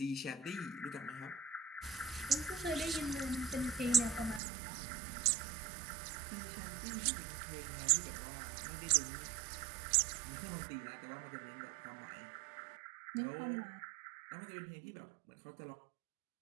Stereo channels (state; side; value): drops out; left; at 4.4 s